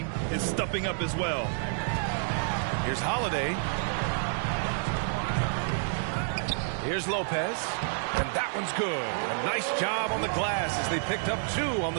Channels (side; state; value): left; silent; digital silence